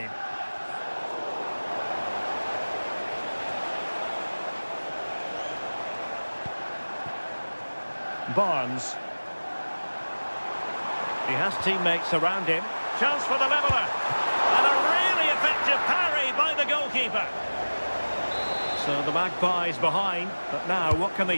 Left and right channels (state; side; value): inverted; both; correlation -1.00